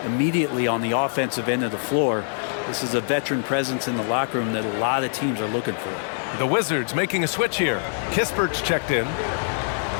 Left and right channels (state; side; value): silent; right; 61 dB below the other